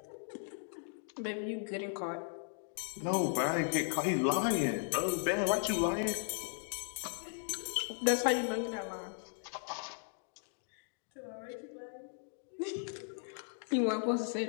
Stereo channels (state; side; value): silent; right; 53 dB below the other